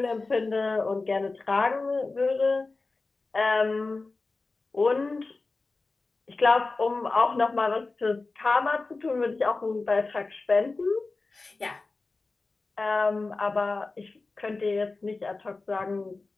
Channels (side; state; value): right; quieter; 3.6 dB